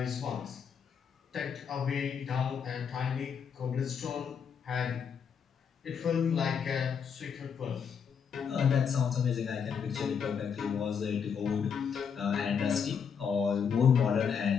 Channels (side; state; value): right; quieter; 6.9 dB